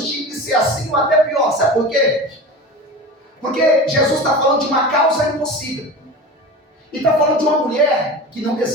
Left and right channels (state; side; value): normal; both; correlation 0.32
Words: tinha que ser assim ou até pior. Sabe por quê? Porque Jesus está falando de uma causa impossível. E está falando de uma mulher que não